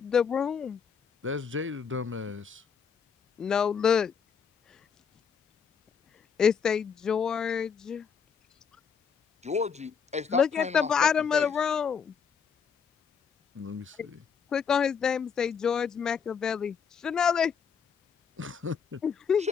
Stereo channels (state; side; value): quieter; right; 6.6 dB